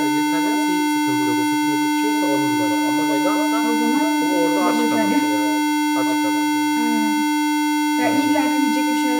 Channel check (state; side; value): identical; both; correlation 1.00